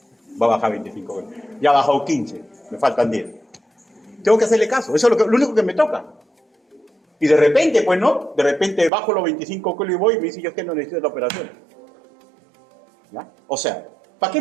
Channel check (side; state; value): left; drops out; at 8.9 s